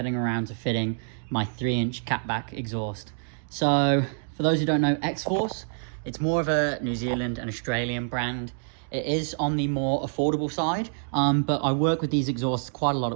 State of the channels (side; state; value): left; silent; digital silence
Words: around to fitting my 3-inch catback exhaust. So, for those who don't know X-Force, it's more of a New Zealand and Australian brand. It is on the more affordable side, but I work with these exhausts quite a lot